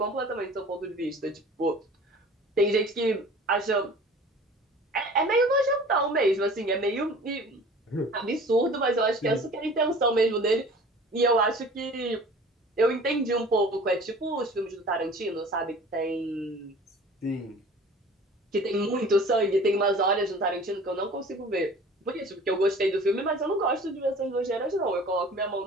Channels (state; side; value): normal; both; correlation 0.45